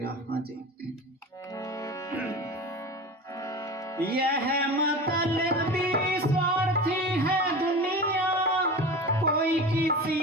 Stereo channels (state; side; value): normal; both; correlation 0.31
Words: हाँ जी। यह मतलबी स्वार्थी है दुनिया, कोई